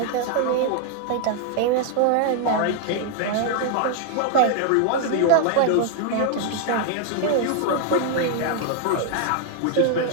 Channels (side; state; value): both; different; correlation 0.00